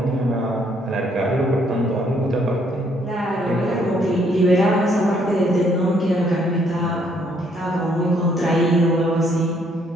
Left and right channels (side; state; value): both; normal; correlation 0.68